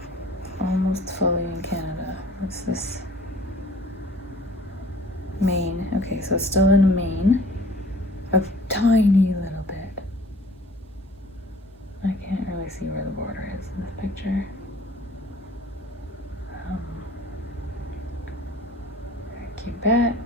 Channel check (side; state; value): both; normal; correlation 0.51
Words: almost fully in Canada. What's this? Maine. Okay, so it's still in Maine. A tiny little bit. I can't really see where the border is in this picture.